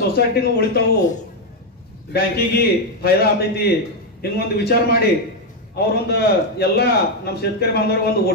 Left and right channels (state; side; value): normal; both; correlation 0.03